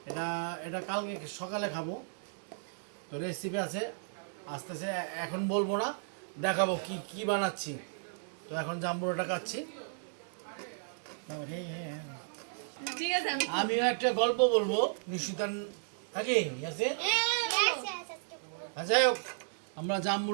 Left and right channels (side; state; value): left; silent; digital silence